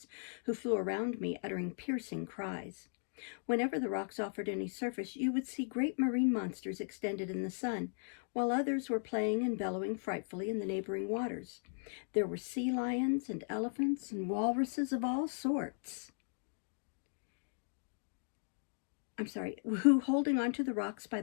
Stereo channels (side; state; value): right; silent; digital silence